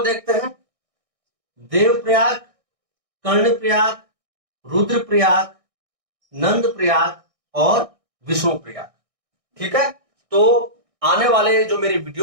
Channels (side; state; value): left; late; 1.6 ms